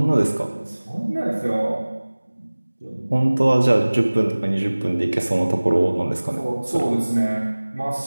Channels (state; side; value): inverted; both; correlation -1.00